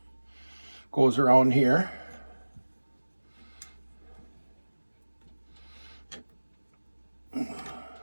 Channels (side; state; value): both; inverted; correlation -1.00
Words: Goes around here.